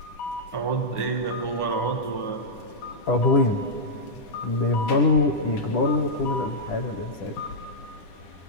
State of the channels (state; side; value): late; right; 10 ms